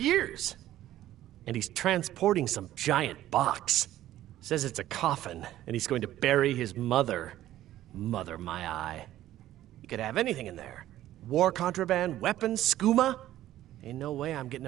And he's transporting some giant box. Says it's a coffin, and he's going to bury his mother. Mother, my eye. You could have anything in there. War contraband, weapons, skooma. Ain't no way I'm getting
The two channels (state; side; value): quieter; left; 13.6 dB